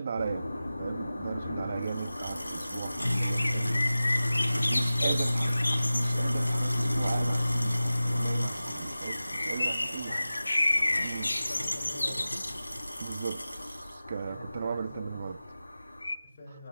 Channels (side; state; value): both; inverted; correlation -0.95